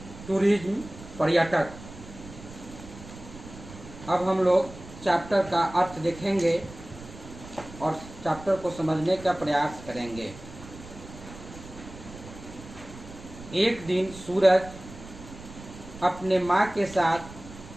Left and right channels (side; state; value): right; noise; rumble, 16 dB below the sound